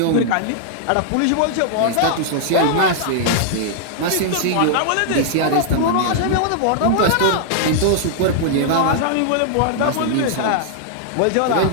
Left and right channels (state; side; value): different; both; correlation -0.01